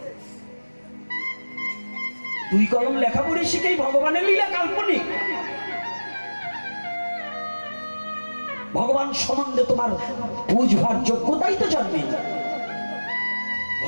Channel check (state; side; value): inverted; both; correlation -1.00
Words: 2 কলম লেখা পড়ে শিখেই ভগবানের লীলা কাল্পনিক। ভগবান সম্বন্ধে তোমার বুঝবার যোগ্যতাই তো জন্মে।